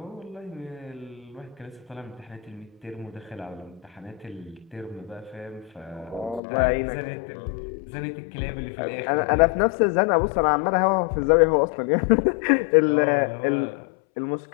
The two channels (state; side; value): drops out; right; at 6.4 s